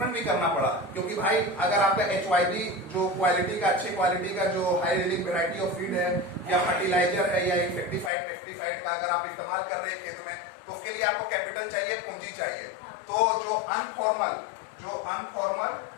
भी करना पड़ा, क्योंकि भाई अगर आपका HYB जो क्वालिटी का, अच्छी क्वालिटी का जो high yielding variety of feed है या फर्टिलाइजर है या इंसेक्टिसाइड पेस्टिसाइड का अगर आप इस्तेमाल कर रहे हैं खेत में, तो उसके लिए आपको कैपिटल चाहिए, पूंजी चाहिए। तो जो अनफॉर्मल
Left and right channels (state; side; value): drops out; right; at 8.1 s